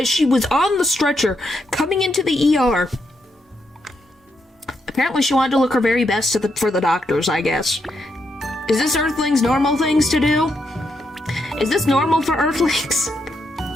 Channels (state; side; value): normal; both; correlation 0.80